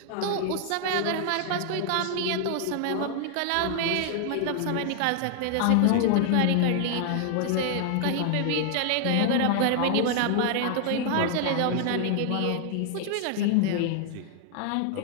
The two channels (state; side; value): different; both; correlation 0.00